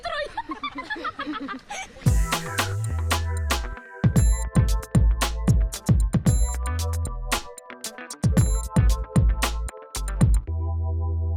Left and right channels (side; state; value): both; identical; correlation 1.00